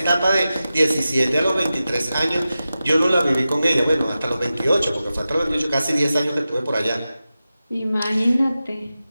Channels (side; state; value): both; inverted; correlation -0.93